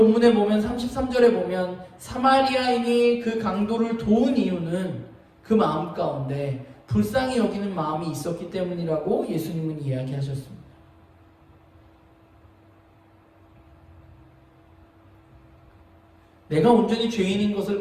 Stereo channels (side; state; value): both; identical; correlation 1.00